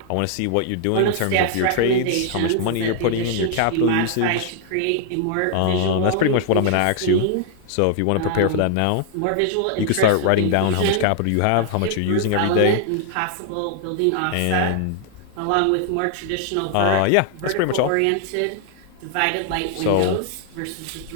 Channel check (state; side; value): different; both; correlation 0.00